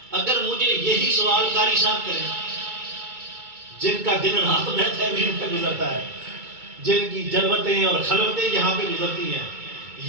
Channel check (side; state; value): left; late; 2.2 ms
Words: اگر مجھے یہی سوال قاری صاحب کریں جن کا دن رات بیتھ ایونیو پہ گزرتا ہے، جن کی جلوتیں اور خلوتیں یہاں پہ گزرتی ہیں،